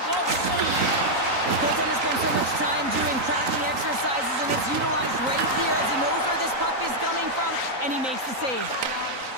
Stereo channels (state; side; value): late; left; 3.9 ms